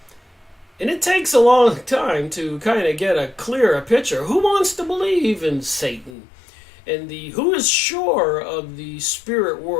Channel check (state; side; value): drops out; right; at 6.1 s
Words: And it takes a long time to kind of get a clearer picture. Who wants to believe in Satan? And who is sure of the spirit